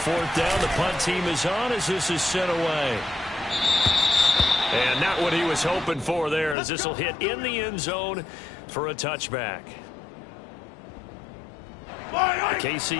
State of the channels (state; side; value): drops out; right; at 6.6 s